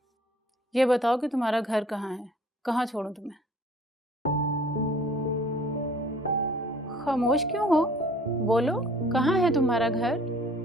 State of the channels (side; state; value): both; normal; correlation 0.53